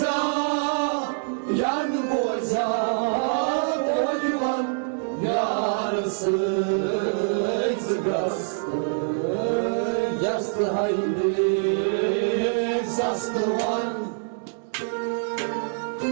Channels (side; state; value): left; silent; 62 dB below the other